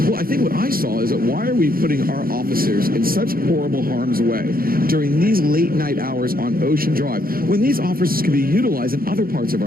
Well, I think what I saw is that why are we putting our officers in such horrible harm's way during these late night hours on Ocean Drive when these officers can be utilized in other parts of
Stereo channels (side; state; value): left; late; 0.42 ms